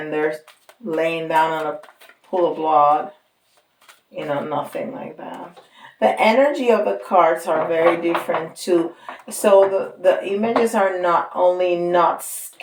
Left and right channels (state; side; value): identical; both; correlation 1.00